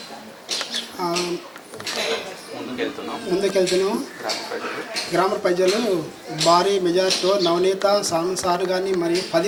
ముందుకెళ్తున్నాము. గ్రామ ప్రజలు భారీ మెజార్టీతో నవనీత స్వామి సారు కానీ మరియు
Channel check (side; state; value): both; identical; correlation 1.00